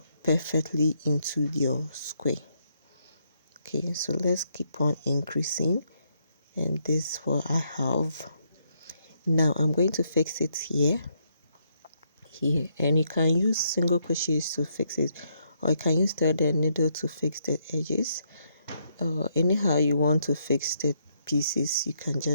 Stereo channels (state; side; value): inverted; both; correlation -0.76